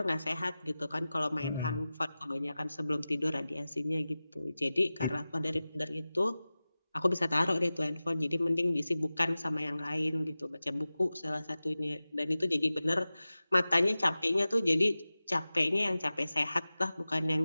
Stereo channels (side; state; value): both; inverted; correlation -0.95